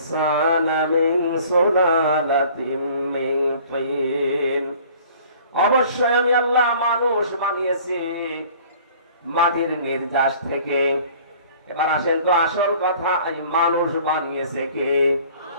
মিন সুলালাতিন মিন তিন, অবশ্যই আমি আল্লাহ মানুষ বানিয়েছি মাটির নির্যাস থেকে। এবার আসেন তো আসল কথা, এই মানুষ বানিয়েছে কে?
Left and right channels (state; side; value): inverted; both; correlation -0.51